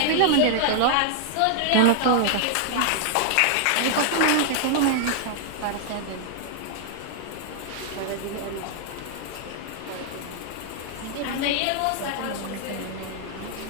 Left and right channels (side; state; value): both; different; correlation 0.00